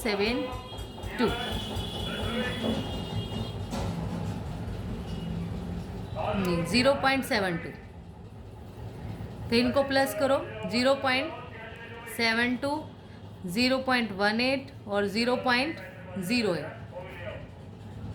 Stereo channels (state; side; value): identical; both; correlation 1.00